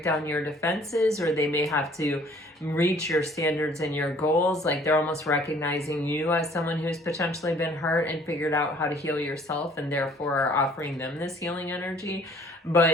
down your defenses, or they may have to reach your standards and your goals. Like they're almost recognizing you as someone who's potentially been hurt and figured out how to heal yourself, and therefore are offering them this healing energy.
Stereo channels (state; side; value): normal; both; correlation 0.56